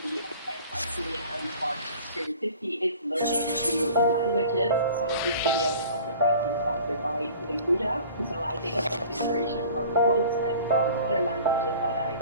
me and sparks creativity is learning new languages. So this video is also partly sponsored by Linguda. So I take a lot of inspiration from quotes and from other languages that I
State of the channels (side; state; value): both; inverted; correlation -0.45